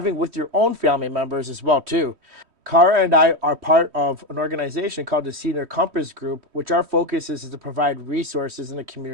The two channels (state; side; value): late; left; 3.1 ms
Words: with your own family members as well too. Cara and I are part of an organization called the Senior Compass Group, which our focus is to provide resources in the